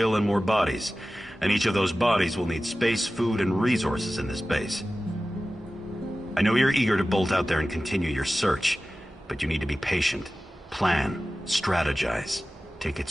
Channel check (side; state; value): both; normal; correlation 0.96